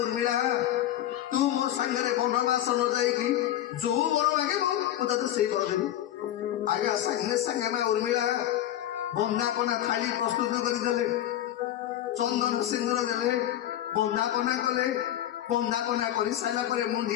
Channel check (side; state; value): right; quieter; 12.4 dB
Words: उर्मिला तू मो सांगे बनवास न जाइकी जो वर मागे तो से वर देवी आज्ञा सांगे सांगे ना उर्मिला बंदापना थाली प्रस्तुत करदे चंदन सिंदूर देले बंदापना कले बंदापना कर सारा